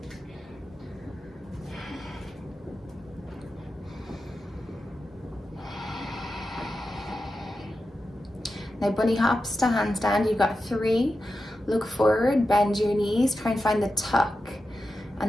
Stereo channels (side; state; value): both; normal; correlation 0.91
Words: Now bunny hops to handstand. You've got 3. Look forward, bend your knees, try and find the tuck,